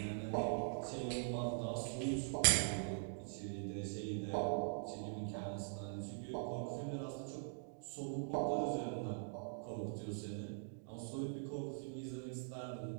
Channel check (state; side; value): silent; left; digital silence